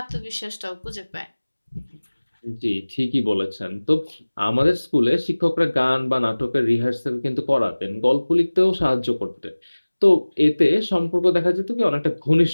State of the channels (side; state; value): both; inverted; correlation -1.00